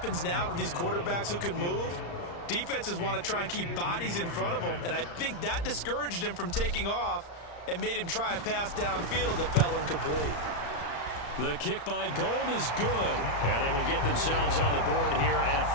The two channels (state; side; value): late; right; 35 ms